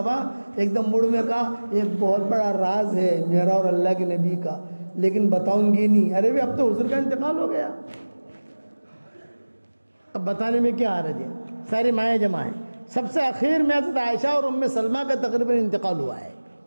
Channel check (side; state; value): both; inverted; correlation -1.00